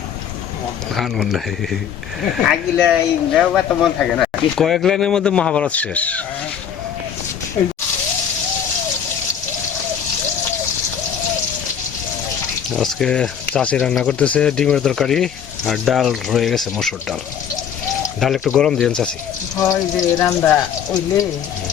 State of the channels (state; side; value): quieter; right; 8.2 dB